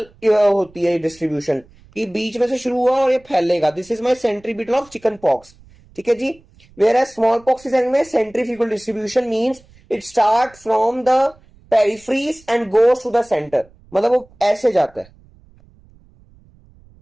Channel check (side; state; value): right; noise; rumble, 28 dB below the sound